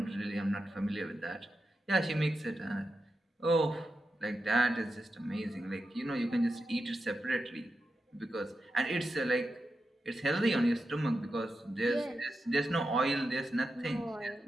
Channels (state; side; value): normal; both; correlation 0.89